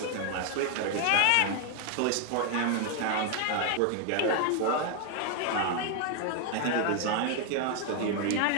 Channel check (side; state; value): both; different; correlation 0.01